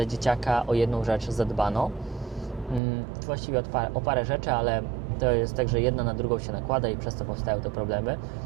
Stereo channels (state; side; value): drops out; left; at 2.8 s